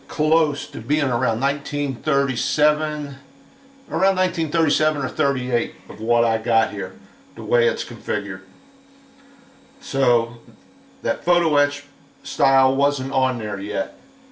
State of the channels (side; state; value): both; identical; correlation 1.00